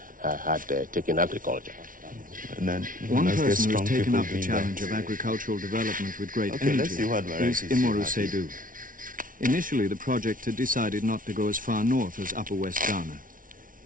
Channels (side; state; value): left; late; 0.39 ms